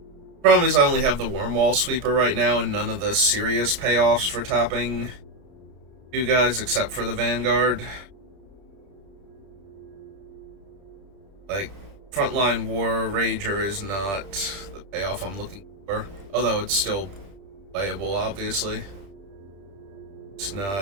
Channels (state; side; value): late; left; 30 ms